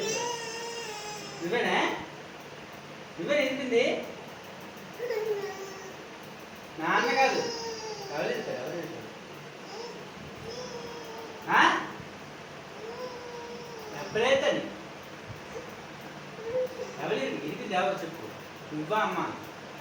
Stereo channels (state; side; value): identical; both; correlation 1.00